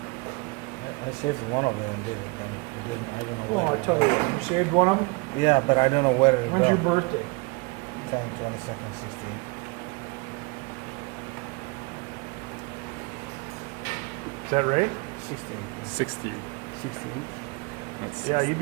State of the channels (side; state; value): left; quieter; 28.0 dB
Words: I saved one of them, did it? Then it didn't, I don't know. Well, I'll tell you what. You saved one of them? Yeah, but I don't know where it When's your went. birthday? 10/22/16. Is that right? 16. 60. 16. That's Yeah, you'd